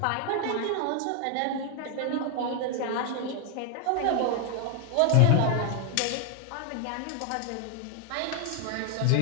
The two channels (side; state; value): both; different; correlation 0.01